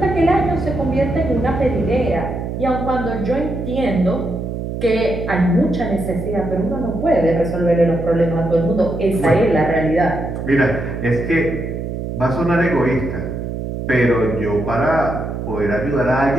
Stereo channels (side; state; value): right; noise; hum, 5 dB below the sound